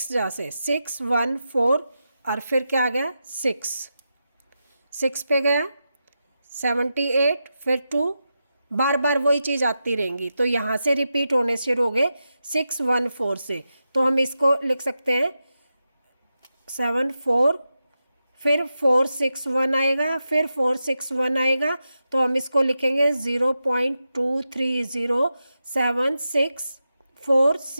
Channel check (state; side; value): inverted; both; correlation -0.89